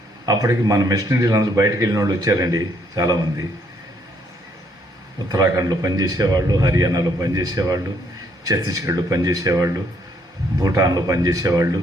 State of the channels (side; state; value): both; normal; correlation 0.69